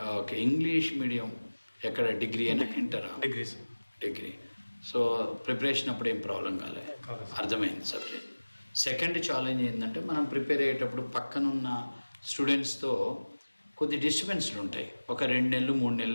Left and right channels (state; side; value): inverted; both; correlation -1.00